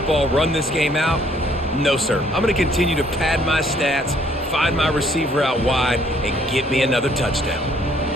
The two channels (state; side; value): normal; both; correlation 0.64